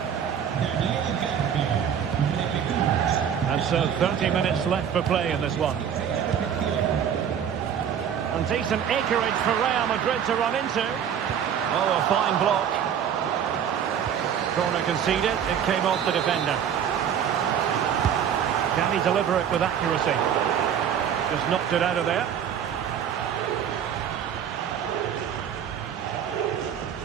And so 30 minutes left for play in this one. And decent acreage for Real Madrid to run into. Oh, a fine block. Corner conceded. It came off the defender. Can he deliver it with accuracy? Just knocked it out of there.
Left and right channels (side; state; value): left; quieter; 8.6 dB